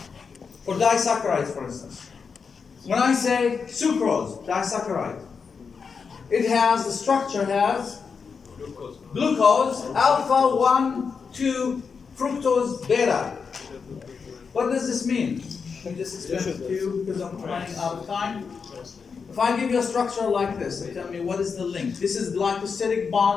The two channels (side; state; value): right; quieter; 5.6 dB